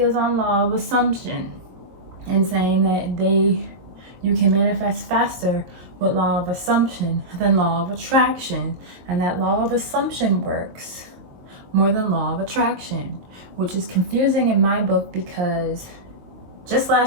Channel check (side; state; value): left; late; 22 ms